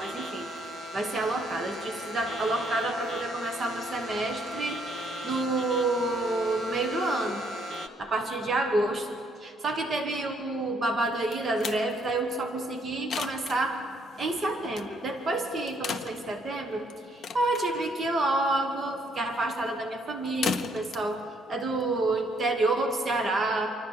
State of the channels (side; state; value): both; normal; correlation 0.69